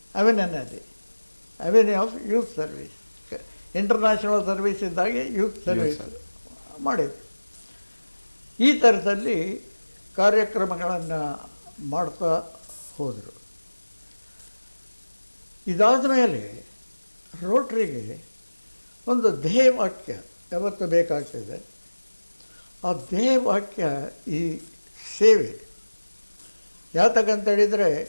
Avenue of youth service. International service ಇದ್ದಾಗೆ ಯೂತ್ ಸರ್ವೀಸ್ ಮಾಡಿದರು. ಈ ಥರದಲ್ಲಿ ಕಾರ್ಯಕ್ರಮಗಳನ್ನು ಮಾಡ್ತಾ ಹೋದರು. ಇದಾದ ಮೇಲೆ ರೋಟ್ರಿಗೆ ಒಂದು ಧ್ಯೇಯವಾಕ್ಯ ಯಾವತ್ತು ಬೇಕಾಗ್ತದೆ. ಆ ಧ್ಯೇಯವಾಕ್ಯ ಈ ಸೇವೆ. ಯಾತಕ್ಕಂತೇಳಿದರೆ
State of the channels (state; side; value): inverted; both; correlation -1.00